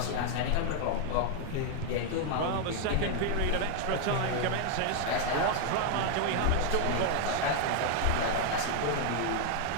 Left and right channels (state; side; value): different; both; correlation 0.00